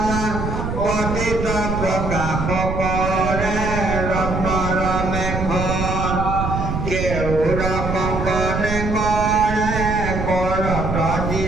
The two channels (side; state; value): right; noise; rumble, 3 dB below the sound